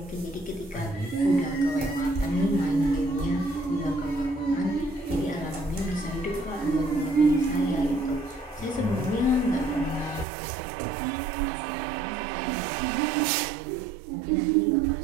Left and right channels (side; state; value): left; drops out; at 10.2 s